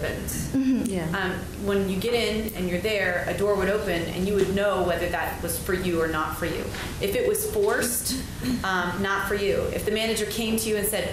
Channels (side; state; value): both; identical; correlation 1.00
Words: Mm-hmm. Yeah. When you get in and you're there, a door would open and you would know whether that was for you or not for you. If it was forced, not for you. If the manager came to you and